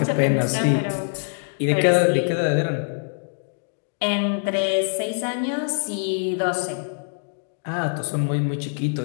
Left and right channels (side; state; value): right; silent; digital silence